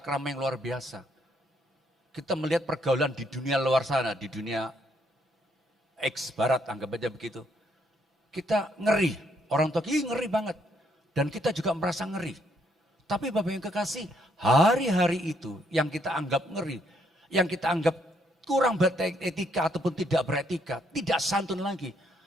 yang luar biasa. Kita melihat pergaulan di dunia luar sana, di dunia X barat, anggap aja begitu. Kita ngeri, orang tua ngeri banget. Dan kita juga merasa ngeri. Tapi Bapak yang kekasih, hari-hari itu yang kita anggap ngeri, yang kita anggap kurang beretika ataupun tidak beretika, tidak santun lagi.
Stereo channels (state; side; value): normal; both; correlation 0.71